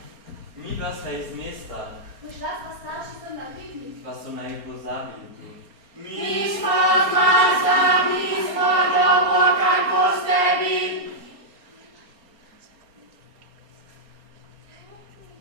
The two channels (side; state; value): left; late; 4.3 ms